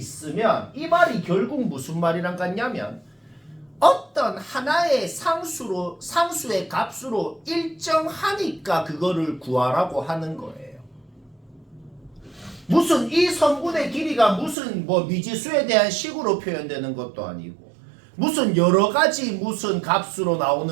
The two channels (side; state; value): left; drops out; at 14.6 s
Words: 이 말이 결국 무슨 말이랑 같냐면 어떤 하나의 상수의 값으로 일정하니까 그거를 구하라고 하는 거예요. 무슨 이 성분의 길이가 무슨 뭐 미지수에 대한 식으로 표현되는 것도 아니고 무슨 여러 가지 무슨 값으로